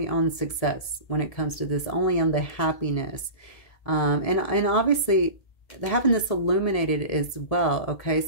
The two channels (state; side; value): late; right; 1.7 ms